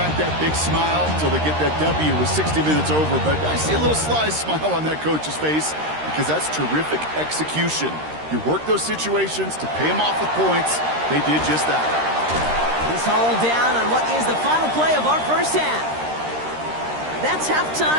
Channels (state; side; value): late; left; 13 ms